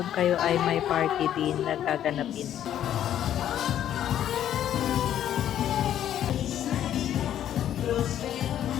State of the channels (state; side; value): quieter; right; 10.9 dB